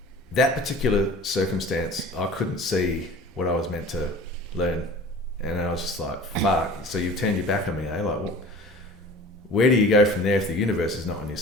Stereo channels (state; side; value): normal; both; correlation 0.42